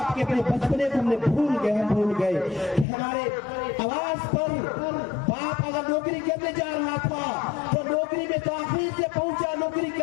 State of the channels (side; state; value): right; drops out; at 2.9 s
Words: के अपने बचपने को हमने भूल गए कि हमारे आवाज पर बाप अगर नौकरी करने जा रहा था तो नौकरी में ताखीर से पहुंचा नौकरी